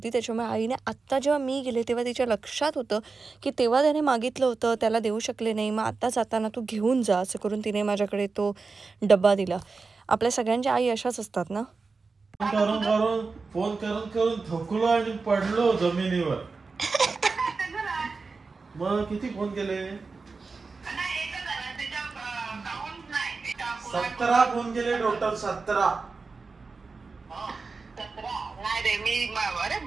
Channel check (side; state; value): left; quieter; 4.3 dB